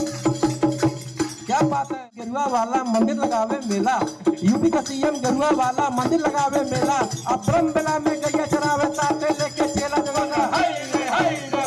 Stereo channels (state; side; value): identical; both; correlation 1.00